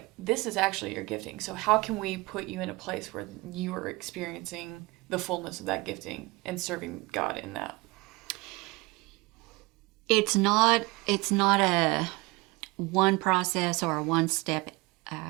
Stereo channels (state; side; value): quieter; left; 23.9 dB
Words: this is actually your gifting. So how can we put you in a place where you are experiencing the fullness of that gifting and serving God in that? It's not a one process or a one step